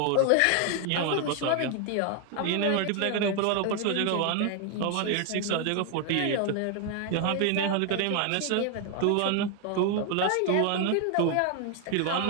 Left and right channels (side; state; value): both; different; correlation 0.01